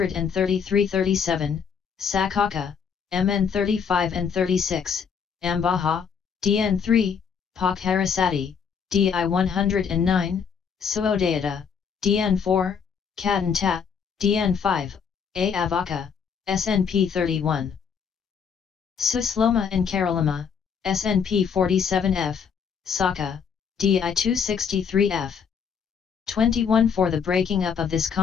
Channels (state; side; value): quieter; right; 6.7 dB